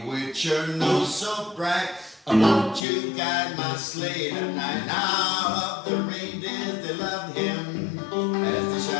with your nose so bright, won't you guide my sleigh tonight? All of the reindeers, they loved him as they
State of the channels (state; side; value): drops out; right; at 2.9 s